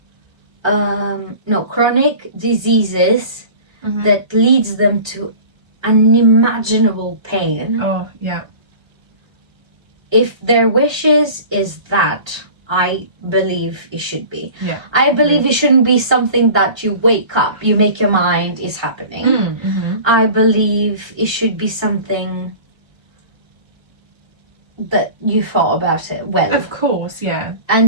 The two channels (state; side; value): late; left; 1.3 ms